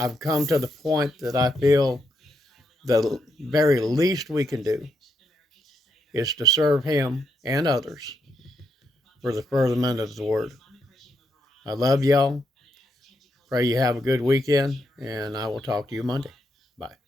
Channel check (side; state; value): both; normal; correlation 0.80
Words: come to the point that I feel the very least we can do is to serve Him and others for the furtherment of the Word. I love y'all. Pray you have a good weekend, and I will talk to you Monday.